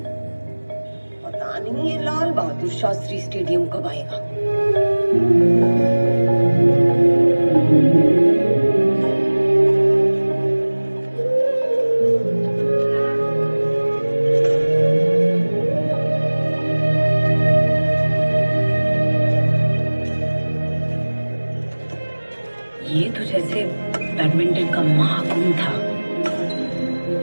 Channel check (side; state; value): both; inverted; correlation -1.00